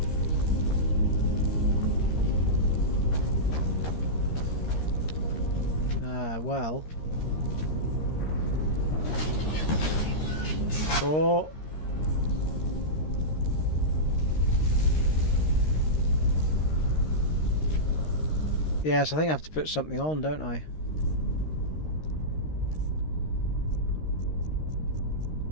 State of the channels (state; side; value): late; right; 13 ms